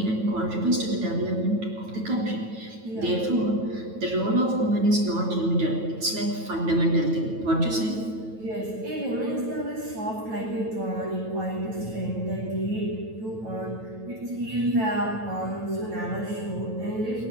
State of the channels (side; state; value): left; late; 9.1 ms